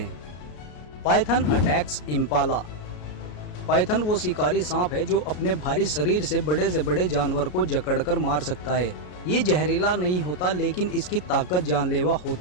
Python attacks Impala. पाइथन वो शिकारी सांप है जो अपने भारी शरीर से बड़े जानवर को जकड़कर मार सकता है। ये जहरीला नहीं होता, लेकिन इसकी ताकत जानलेवा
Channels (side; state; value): right; late; 33 ms